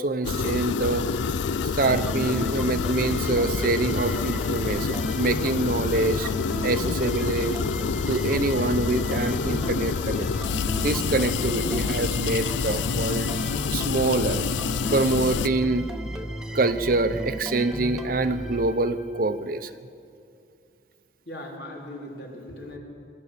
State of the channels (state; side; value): normal; both; correlation 0.33